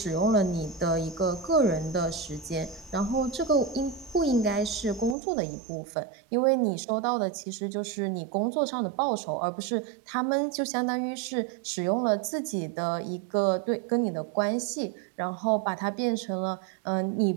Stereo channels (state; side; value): drops out; left; at 5.2 s